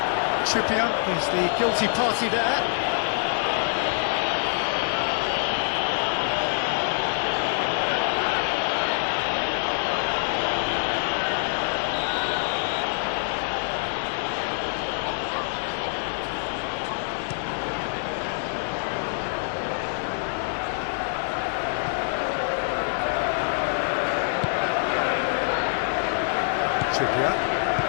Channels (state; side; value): silent; right; 61 dB below the other